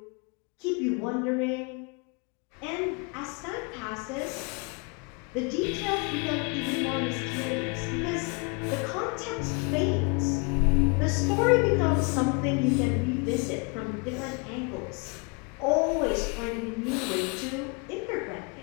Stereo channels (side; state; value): right; quieter; 33.1 dB